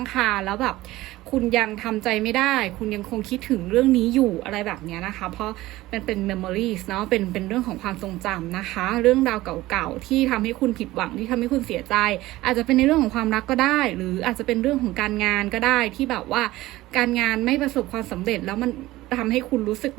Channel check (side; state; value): left; quieter; 17.5 dB